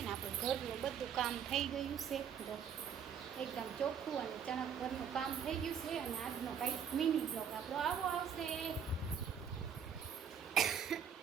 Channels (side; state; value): left; quieter; 7.6 dB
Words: ને. આપણું ઘરનું બધું કામ થઈ ગયું છે, જો એકદમ ચોખ્ખું અને ચણક ઘરનું કામ થઈ ગયું છે. અને આજનો કંઈક મિની બ્લોગ આપણો આવો આવશે.